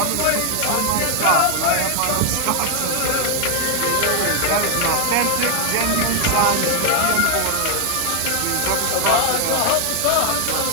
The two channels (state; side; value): different; both; correlation 0.00